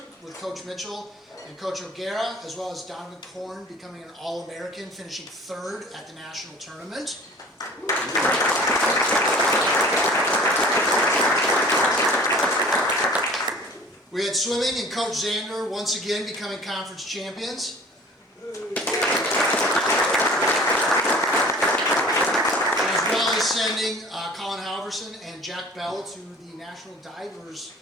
with Coach Mitchell and Coach Decorah, as well as Donovan Korn becoming an All-American, finishing 3rd at the national tournament. We had swimming and Coach Zander once again becoming conference champions. As well as sending Colin Halverson and Jack Bell to the National Divers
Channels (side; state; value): both; normal; correlation 0.46